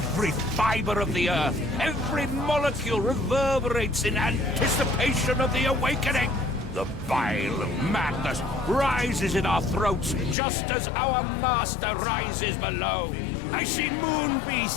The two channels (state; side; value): drops out; right; at 10.4 s